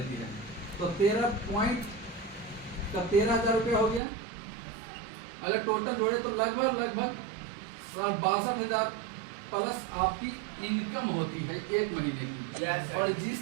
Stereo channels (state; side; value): drops out; left; at 4.0 s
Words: है। तो 13 पॉइंट का 13,000 रुपया हो गया। अगर टोटल जोड़े तो लगभग 62,000 प्लस आपकी इनकम होती है 1 महीने की। और